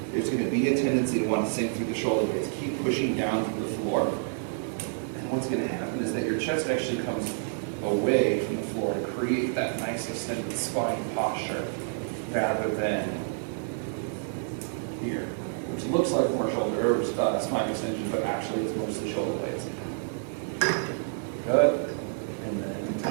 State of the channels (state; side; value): silent; left; digital silence